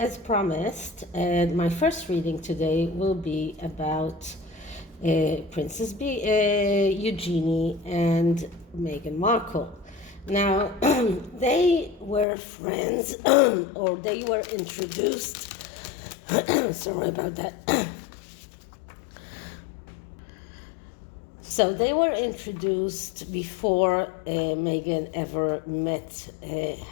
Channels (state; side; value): drops out; right; at 12.2 s